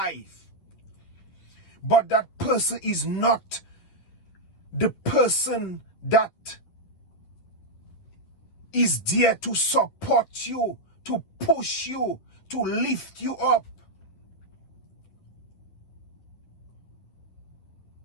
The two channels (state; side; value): late; right; 11 ms